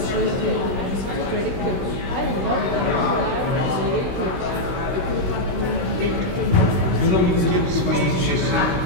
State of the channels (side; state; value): left; late; 16 ms